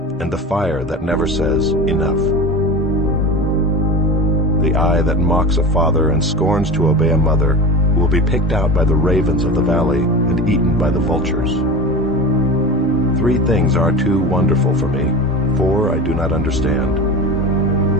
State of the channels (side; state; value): both; normal; correlation 0.29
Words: and the fire that never says enough. The eye that mocks a father and scorns to obey a mother will be picked out by the ravens of the valley and eaten by the vultures. 3 things are too wonderful for me, 4 I do not understand.